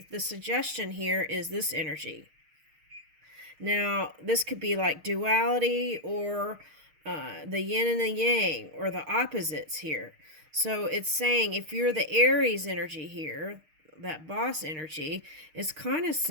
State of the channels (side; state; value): left; late; 6.5 ms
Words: suggestion here is this energy. Now, this could be like duality, or the yin and the yang, or the opposites here. So it's saying if you're the Aries energy here, that boss energy, it's kind of